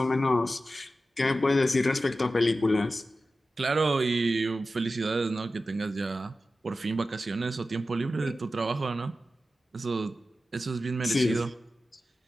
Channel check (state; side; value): normal; both; correlation 0.93